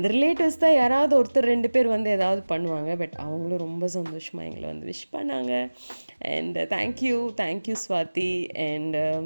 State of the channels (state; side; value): inverted; both; correlation -1.00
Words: ரிலேட்டிவ்ஸ் தான் யாராவது ஒருத்தர் 2 பேர் வந்து ஏதாவது பண்ணுவாங்க. பட் அவங்களும் ரொம்ப சந்தோஷமாக எங்களை வந்து விஷ் பண்ணாங்க. And thank you Swathi. அண்ட்